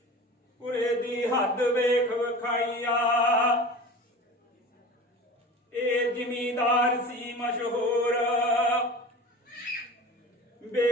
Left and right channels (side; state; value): both; normal; correlation 0.35